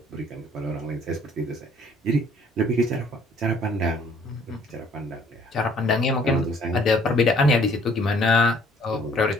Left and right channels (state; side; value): normal; both; correlation 0.59